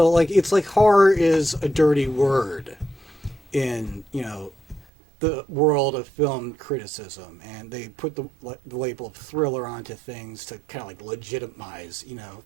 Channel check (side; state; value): left; drops out; at 4.9 s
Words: it's like horror is a dirty word in, the world of film criticism, and they put the label of thriller onto things to kind of legitimize,